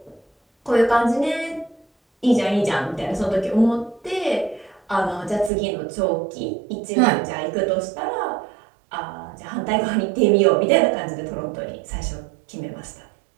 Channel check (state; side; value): drops out; left; at 5.5 s